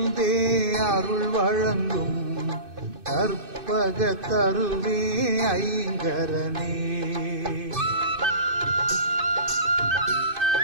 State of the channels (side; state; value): left; late; 2.5 ms